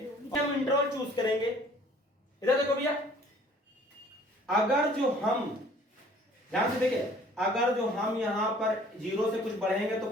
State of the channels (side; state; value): both; normal; correlation 0.53